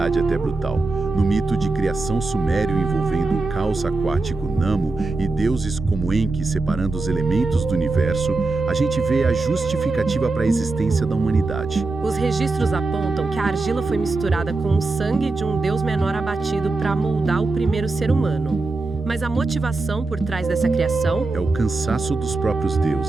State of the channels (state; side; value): quieter; left; 3.4 dB